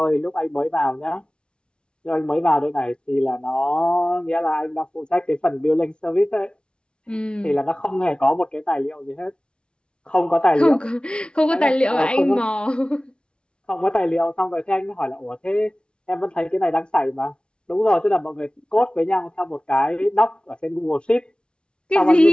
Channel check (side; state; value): right; late; 0.055 ms